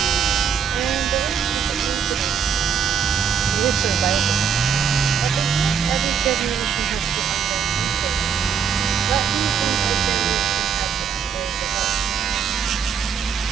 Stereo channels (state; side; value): quieter; left; 7.1 dB